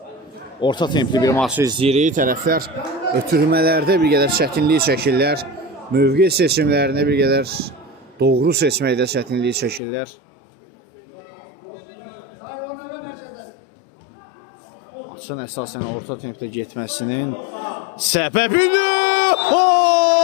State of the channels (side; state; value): right; drops out; at 9.8 s